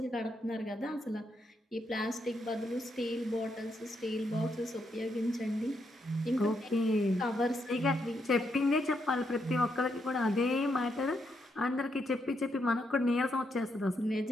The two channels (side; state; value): both; normal; correlation 0.79